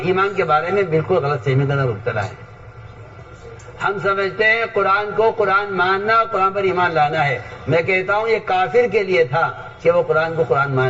ایمان کے بارے میں بالکل غلط فہمی کا مبتلا ہے. ہم سمجھتے ہیں قرآن کو قرآن ماننا اور قرآن پر ایمان لانا ہے. میں کہتا ہوں یہ کافر کے لیے تھا کہ وہ قرآن کو قرآن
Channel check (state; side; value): identical; both; correlation 1.00